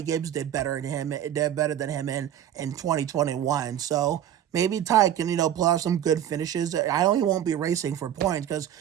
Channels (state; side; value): quieter; left; 10.6 dB